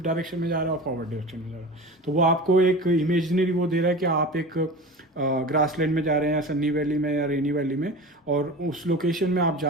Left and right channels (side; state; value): both; normal; correlation 0.33